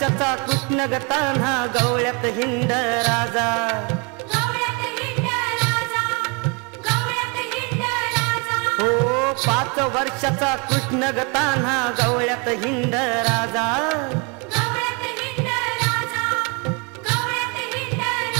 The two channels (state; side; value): quieter; left; 32.4 dB